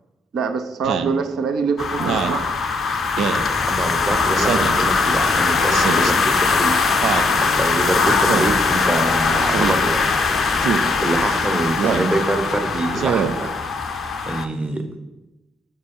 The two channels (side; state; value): both; normal; correlation 0.71